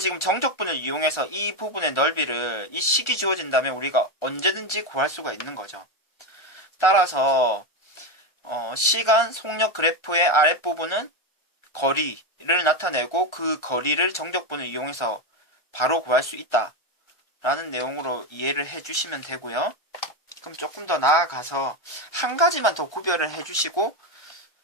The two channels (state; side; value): late; right; 1.3 ms